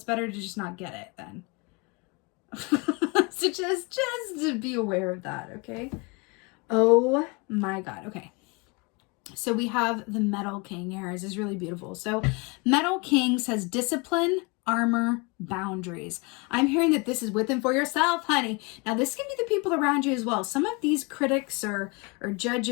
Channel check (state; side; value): quieter; right; 28.7 dB